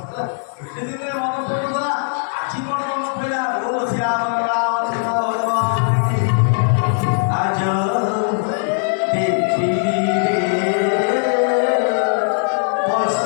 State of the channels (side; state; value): right; silent; digital silence